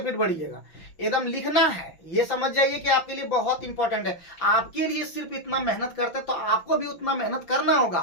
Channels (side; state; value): right; late; 5.9 ms